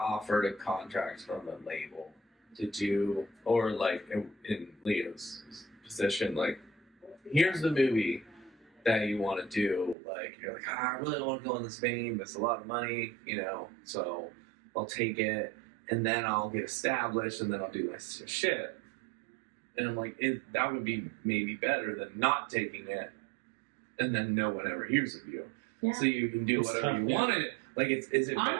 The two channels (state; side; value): drops out; left; at 10.0 s